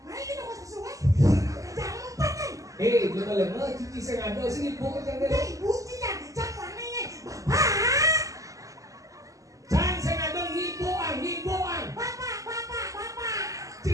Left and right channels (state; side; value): late; left; 0.16 ms